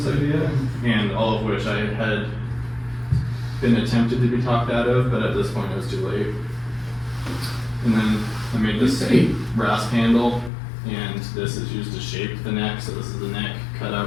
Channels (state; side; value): drops out; right; at 10.5 s